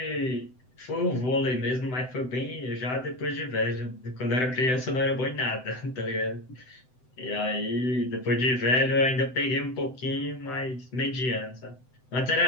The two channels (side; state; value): right; late; 7.8 ms